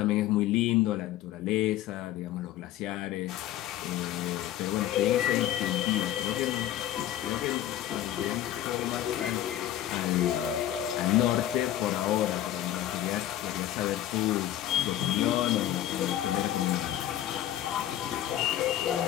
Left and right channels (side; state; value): right; quieter; 12.6 dB